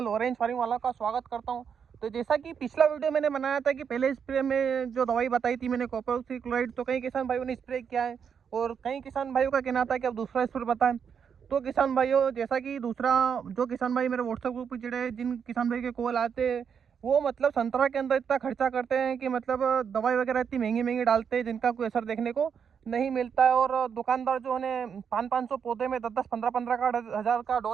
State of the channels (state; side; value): quieter; left; 7.1 dB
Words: ऑरेंज फार्मिंग वाला का स्वागत करता हूं। तो जैसा कि पिछला वीडियो मैंने बनाया था कि पहले स्प्रे में जो दवाई बताई थी मैंने कॉपर ऑक्सीक्लोराइड, तो कई किसान भाइयों ने स्प्रे किया है और कई किसान भाइयों का कहना था कि अब दूसरा स्प्रे बताएं। तो किसान भाइयों, जैसा कि दूसरा जो किसान भाई मेरे व्हाट्सएप ग्रुप पर जुड़े, जिन किसान भाई के कॉल आते हैं, वो मतलब संतरा के अंदर इतना खर्चा करते हैं कि मतलब दवाई वगैरह इतनी महंगी महंगी डालते हैं जिनका कोई असर देखने को नहीं मिलता है। और दुकानदार जो है 500-500 पौधे में 10-10, 15-15 का 1000 का